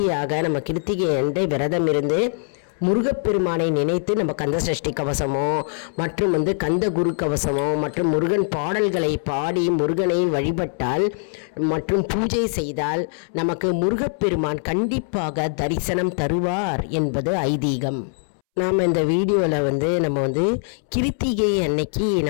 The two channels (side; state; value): right; silent; 64 dB below the other